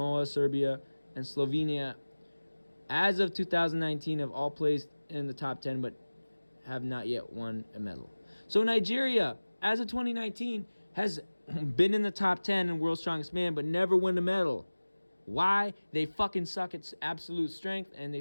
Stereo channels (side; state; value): both; inverted; correlation -1.00